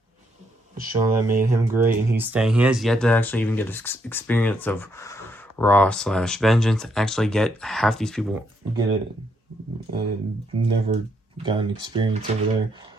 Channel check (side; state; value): both; normal; correlation 0.75